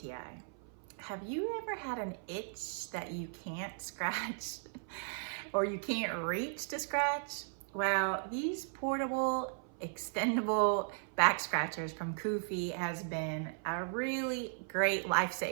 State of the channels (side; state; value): left; silent; 53 dB below the other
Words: Have you ever had an itch that you can't scratch or you can't reach to scratch? Well, these portable extendable back scratchers from Kuvvfe has been a really great